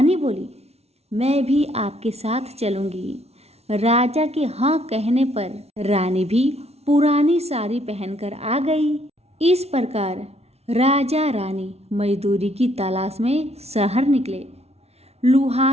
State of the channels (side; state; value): left; late; 0.31 ms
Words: बोली, मैं भी आपके साथ चलूंगी। राजा के हाँ कहने पर रानी भी पुरानी साड़ी पहनकर आ गई। इस प्रकार राजा रानी मजदूरी की तलाश में शहर निकले।